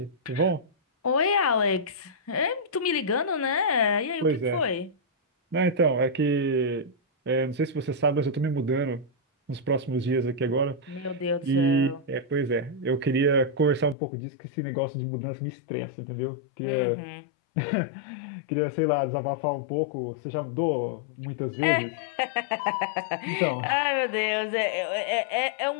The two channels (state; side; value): drops out; right; at 14.0 s